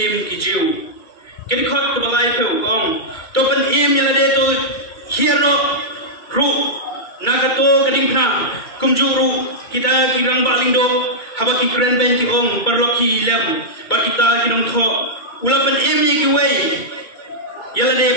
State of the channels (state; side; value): late; right; 2.3 ms